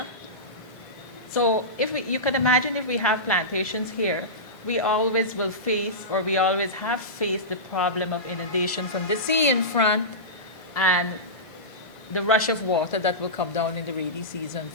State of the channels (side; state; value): both; normal; correlation -0.17